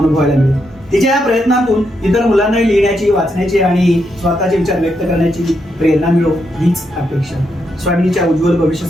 मिळतो. तिच्या या प्रयत्नातून इतर मुलांना लिहिण्याची, वाचण्याची आणि स्वतःचे विचार व्यक्त करण्याची प्रेरणा मिळो हीच अपेक्षा. स्वामिनीच्या उज्ज्वल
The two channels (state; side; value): normal; both; correlation 0.81